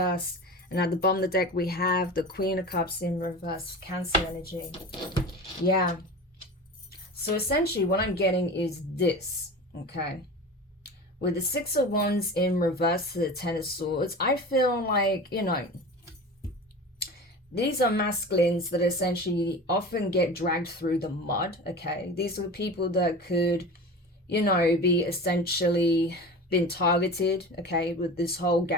And at the bottom of the deck, we have the Queen of Cups in reverse. Cancer energy. Yeah. So essentially what I'm getting is this, okay? With the Six of Wands in reverse to the Ten of Swords, I feel like, you know, these are masculines that essentially often get dragged through the mud, okay? These are people that could, you know, be essentially been targeted, okay, with this whole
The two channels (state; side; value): normal; both; correlation 0.33